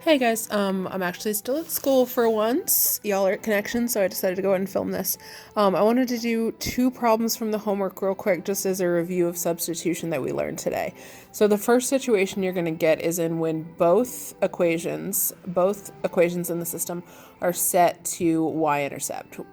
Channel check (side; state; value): both; identical; correlation 1.00